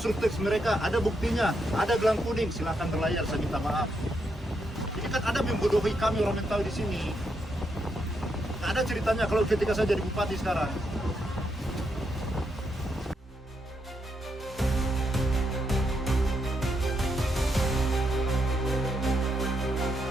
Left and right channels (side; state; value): both; normal; correlation 0.80